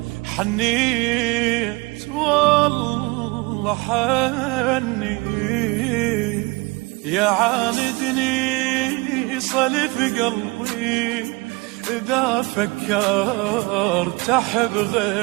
حنيت والله حنيت، يا عاندني صلف قلبي إذا فكرت أحب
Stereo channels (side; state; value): left; quieter; 25.3 dB